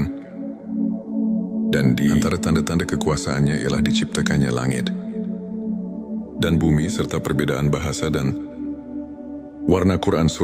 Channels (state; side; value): identical; both; correlation 1.00